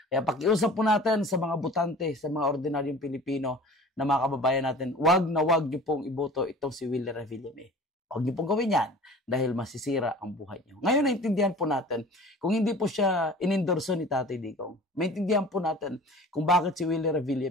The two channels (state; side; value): normal; both; correlation 0.42